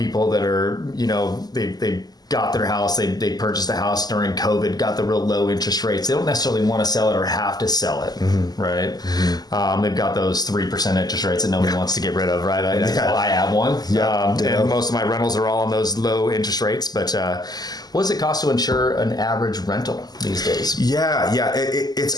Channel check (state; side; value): late; right; 0.19 ms